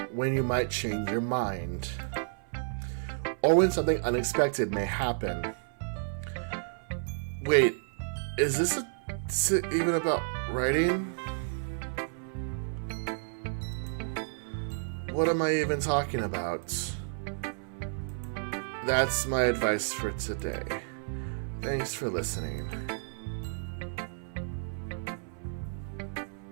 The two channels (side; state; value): left; silent; 57 dB below the other